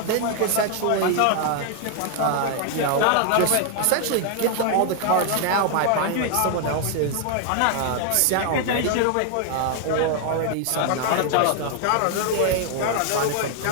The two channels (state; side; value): different; both; correlation 0.00